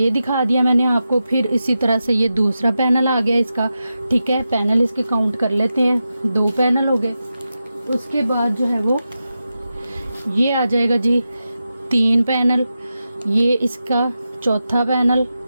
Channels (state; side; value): inverted; both; correlation -0.90